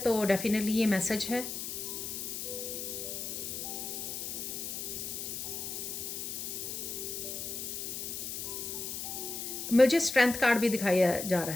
डेफिनेटली ये मैसेज है। मुझे स्ट्रेंथ कार्ड भी दिखाया जा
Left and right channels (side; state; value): left; noise; hiss, 5 dB below the sound